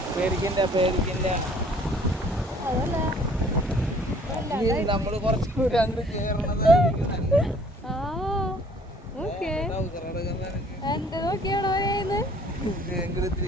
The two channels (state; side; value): normal; both; correlation 0.57